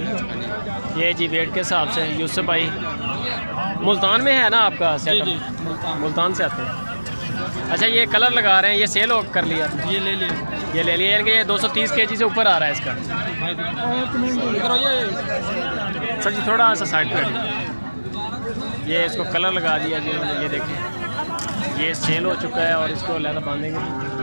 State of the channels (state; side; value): inverted; both; correlation -1.00